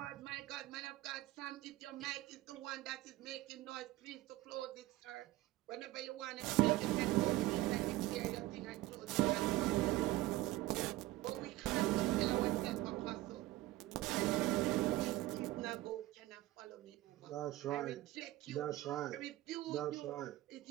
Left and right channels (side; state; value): left; quieter; 17.1 dB